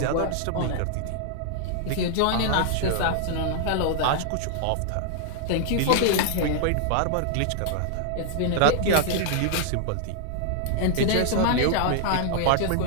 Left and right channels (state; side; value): different; both; correlation -0.01